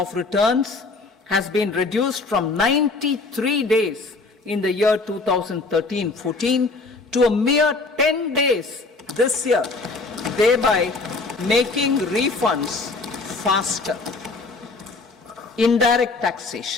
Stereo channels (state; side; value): quieter; right; 3.7 dB